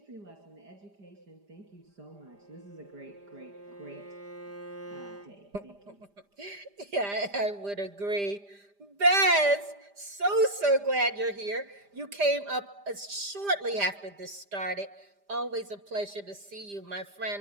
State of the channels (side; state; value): left; late; 5.0 ms